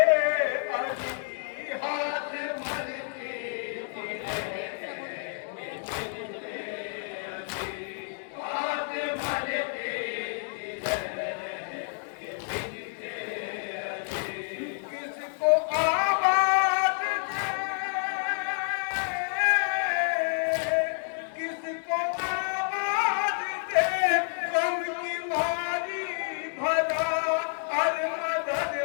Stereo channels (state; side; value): silent; right; 58 dB below the other